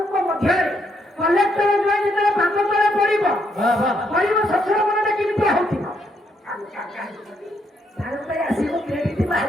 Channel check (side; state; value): both; normal; correlation 0.75